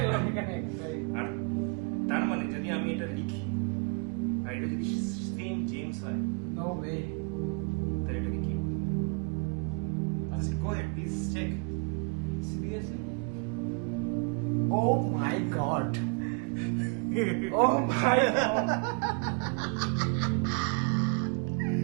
এখানে। আর তার মানে যদি আমি এটা লিখি আর এটা যদি সেম জেমস হয়, নো ওয়ে। তাহলে এটাকে কি বলবো? আচ্ছা, go ahead please check. Seriously? Oh my God. Oh my god.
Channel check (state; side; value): quieter; left; 33.7 dB